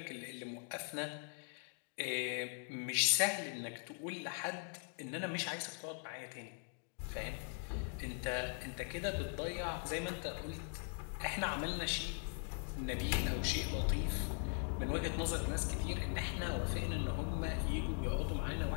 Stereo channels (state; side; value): silent; right; 51 dB below the other